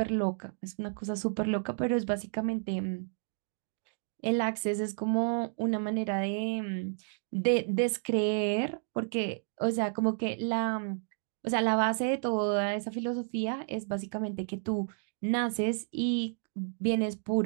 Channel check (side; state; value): left; silent; digital silence